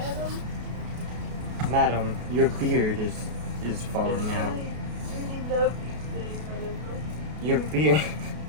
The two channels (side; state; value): left; late; 33 ms